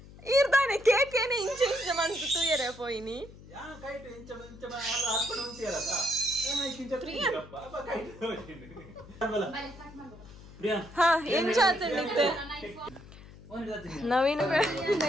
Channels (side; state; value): left; noise; hum, 18 dB below the sound